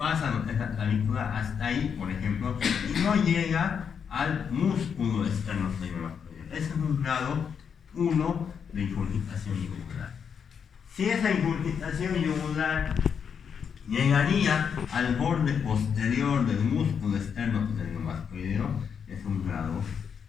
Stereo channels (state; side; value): quieter; right; 7.1 dB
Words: esa clavícula hasta ahí, por ejemplo, y no llega al músculo externo glenomastoideo. Ese es un grado 1 de ingurgitación yugular. Si esa ingurgitación yugular llegaría al borde posterior del músculo externo esternocleidomastoideo, es un grado